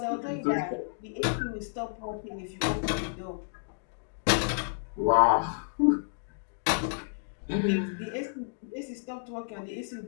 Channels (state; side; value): silent; right; digital silence